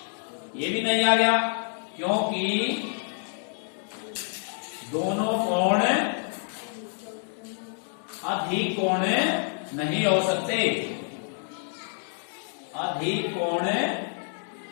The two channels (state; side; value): silent; right; 60 dB below the other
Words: ये भी नहीं आ गया, क्योंकि दोनों कोण अधिक कोण नहीं हो सकते, अधिक कोण